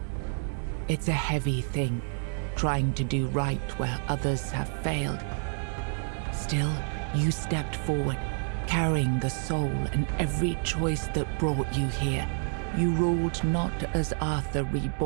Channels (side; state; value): left; silent; 59 dB below the other